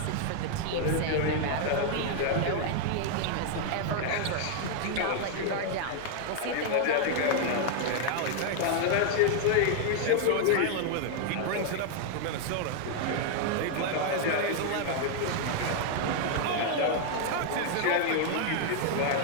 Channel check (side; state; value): both; different; correlation 0.00